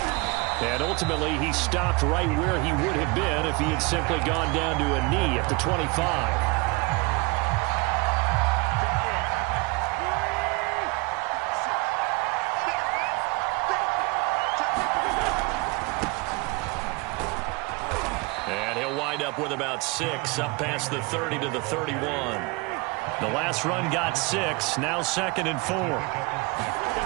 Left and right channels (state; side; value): quieter; left; 27.0 dB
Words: And ultimately, he stopped right where he would have been if he had simply gone down to a knee at the 25. And he'll wind up with about 6, up past the 30 to the 31. The last run got 6, now 2nd and 4.